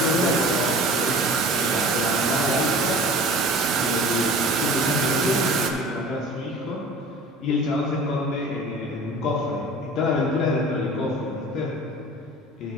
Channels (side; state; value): both; normal; correlation 0.41